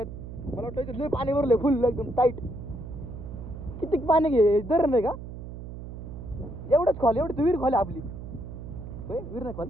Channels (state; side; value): noise; right; hum, 10 dB below the sound